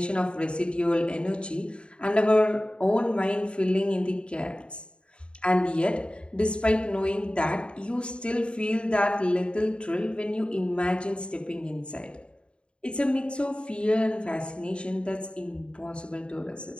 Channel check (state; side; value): late; right; 0.055 ms